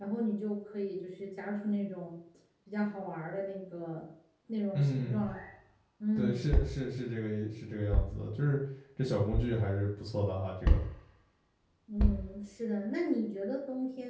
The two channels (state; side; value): identical; both; correlation 1.00